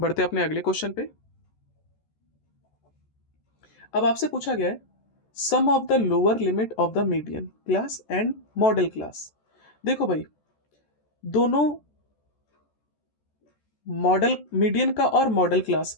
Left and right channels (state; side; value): late; right; 14 ms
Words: अपने अगले क्वेश्चन पे। अब आपसे पूछा गया है sum of the lower limit of the median class and modal class. देखो भाई, दोनों मॉडल, मीडियन का और मॉडल क्लास